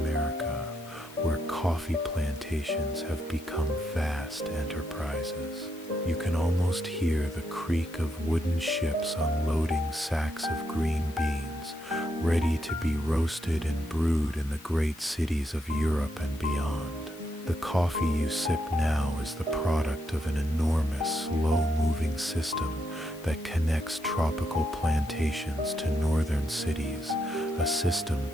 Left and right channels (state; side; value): noise; left; hiss, 20 dB below the sound